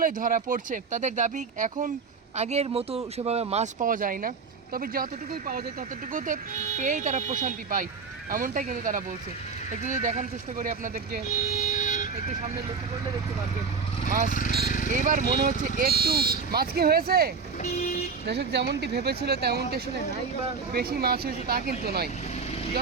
ধরা পড়ছে। তাদের দাবি, এখন আগের মতো সেভাবে মাছ পাওয়া যায় না, তবে যতটুকুই পাওয়া যায় ততটুকুতে পেয়েই তারা প্রশান্তি পায়, এমনটাই কিন্তু তারা বলছে। একটু যদি দেখানোর চেষ্টা করি আপনাদেরকে, একটু সামনে লক্ষ্য করলে দেখতে পারবেন মাছ। এইবার মনে হচ্ছে একটু মাছ কি হয়েছে, দর্শক যেমনটি ভেবেছিল তেমনটি আসলে নাই, বা বেশি মাছ হয়েছে তা কিন্তু নয়।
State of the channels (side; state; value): left; quieter; 5.3 dB